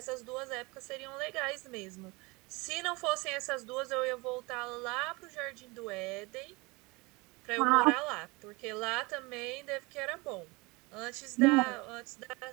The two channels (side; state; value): left; quieter; 25.1 dB